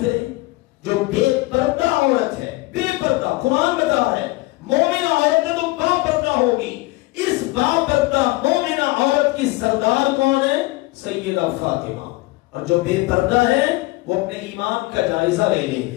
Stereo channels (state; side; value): quieter; right; 21.1 dB